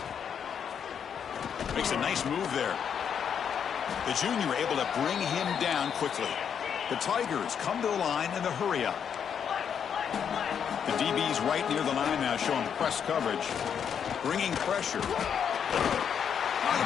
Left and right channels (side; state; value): right; quieter; 7.8 dB